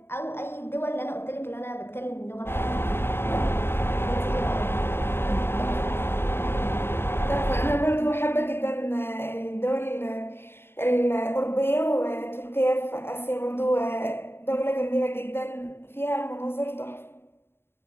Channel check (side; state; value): right; late; 0.11 ms